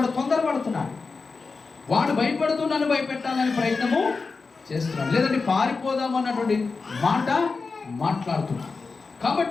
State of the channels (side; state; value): right; quieter; 4.4 dB